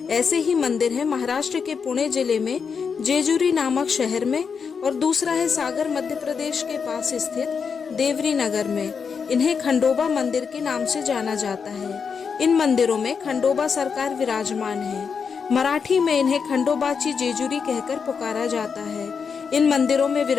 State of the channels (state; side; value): quieter; right; 6.0 dB